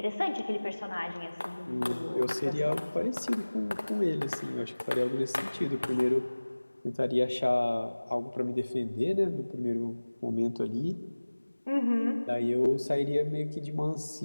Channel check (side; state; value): both; inverted; correlation -1.00